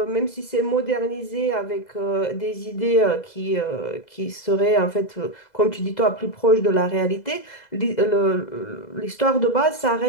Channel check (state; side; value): late; right; 2.0 ms